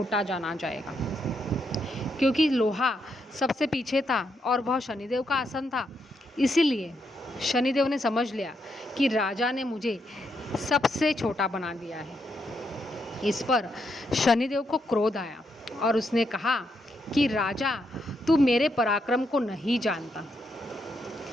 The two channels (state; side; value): normal; both; correlation 0.79